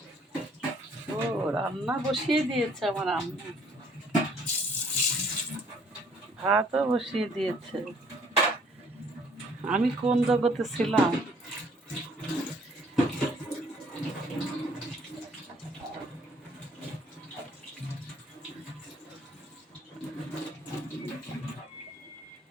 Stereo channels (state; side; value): normal; both; correlation 0.61